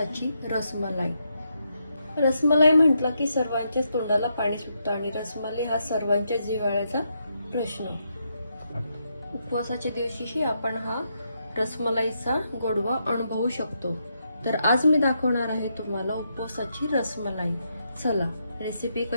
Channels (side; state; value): both; inverted; correlation -0.80